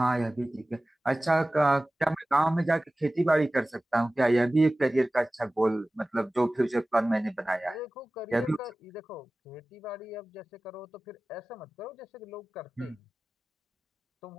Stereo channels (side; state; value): both; normal; correlation 0.97